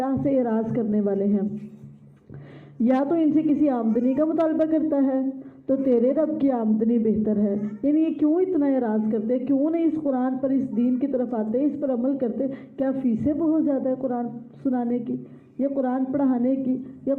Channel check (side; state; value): both; identical; correlation 1.00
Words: سے اعراض کرنے والے ہیں. یا تو ان سے کسی آمدنی کا مطالبہ کرتا ہے تو تیرے رب کی آمدنی بہتر ہے. یعنی یہ کیوں اتنا اعراض کرتے، کیوں نہیں اس قرآن پر، اس دین کی طرف آتے، اس پر عمل کرتے؟ کیا فیسیں بہت زیادہ ہے قرآن سنانے کی، یا قرآن پڑھانے کی، یا